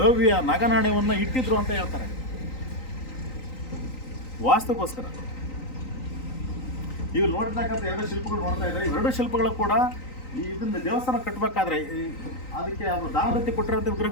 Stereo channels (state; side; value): late; right; 3.9 ms